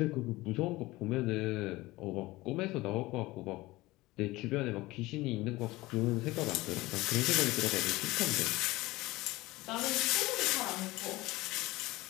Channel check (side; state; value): right; quieter; 19.8 dB